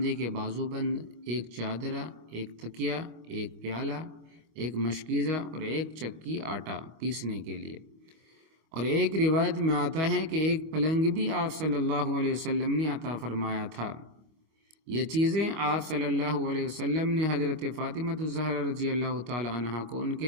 کے بازو بند، 1 چادرہ، 1 تکیہ، 1 پیالہ، 1 مشکیزہ اور 1 چکی آٹا پیسنے کے لیے۔ اور ایک روایت میں آتا ہے کہ 1 پلنگ بھی آپ صلی اللہ علیہ وسلم نے عطا فرمایا تھا۔ یہ چیزیں آپ صلی اللہ علیہ وسلم نے حضرت فاطمہ الزہرا رضی اللہ تعالی عنہا کو ان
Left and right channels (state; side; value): late; left; 25 ms